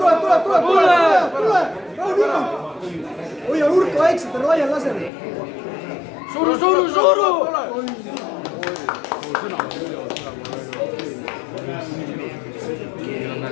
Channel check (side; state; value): right; drops out; at 5.1 s